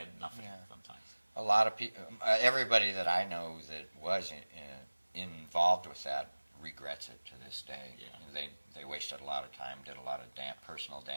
nothing. Yeah. Sometimes a lot of people, everybody that I know that was involved with that regrets it to this day. Yeah. They wasted a lot of time, did a lot of personal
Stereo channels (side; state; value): both; inverted; correlation -1.00